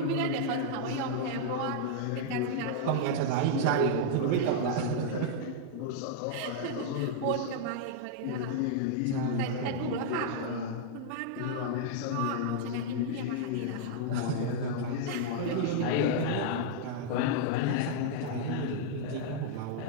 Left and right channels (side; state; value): both; different; correlation -0.01